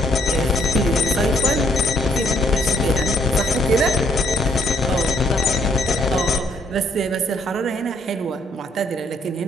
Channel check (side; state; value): both; normal; correlation 0.68